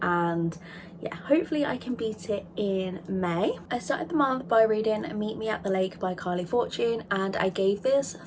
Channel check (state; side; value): identical; both; correlation 1.00